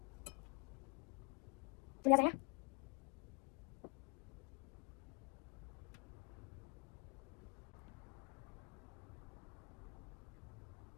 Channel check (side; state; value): right; quieter; 30.7 dB